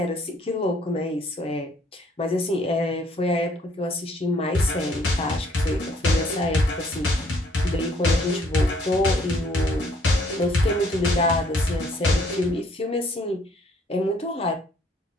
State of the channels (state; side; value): normal; both; correlation 0.63